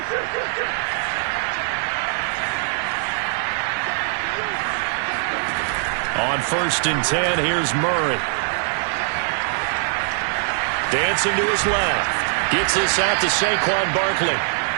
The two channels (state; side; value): silent; left; digital silence